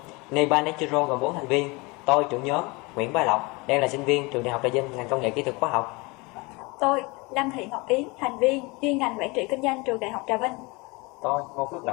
Nypa Natural gồm 4 thành viên. Tôi, trưởng nhóm, Nguyễn Bá Lộc, đang là sinh viên Trường Đại học Trà Vinh ngành công nghệ kỹ thuật hóa học. Tôi, Lâm Thị Ngọc Yến, thành viên chuyên ngành quản trị kinh doanh Trường Đại học Trà Vinh. Tôi, Ngô Phước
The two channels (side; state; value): right; quieter; 26.1 dB